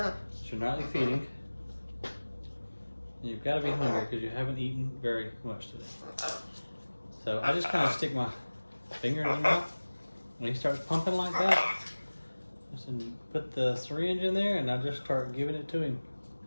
You're nightly feeding. You've got to be hungry because you haven't eaten very much today. So I just kind of stick my finger in his mouth. When he starts pumping like that, I just put the syringe in there and I just start giving it to him.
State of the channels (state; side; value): inverted; both; correlation -1.00